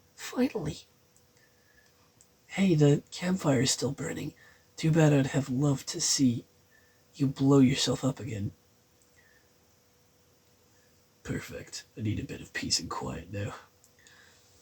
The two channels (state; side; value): identical; both; correlation 1.00